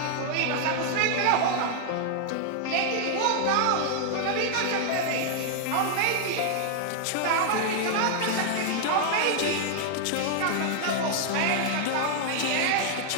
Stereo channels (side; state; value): both; different; correlation 0.00